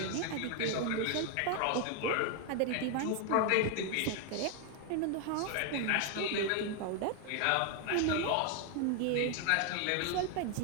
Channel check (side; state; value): both; different; correlation 0.01